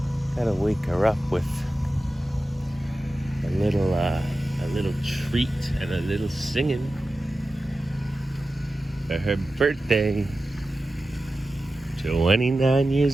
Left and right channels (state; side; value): normal; both; correlation 0.94